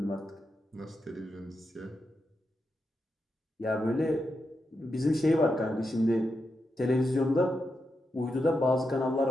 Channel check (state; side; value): normal; both; correlation 0.86